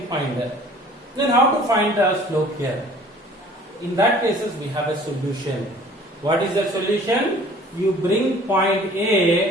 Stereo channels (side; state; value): both; normal; correlation 0.50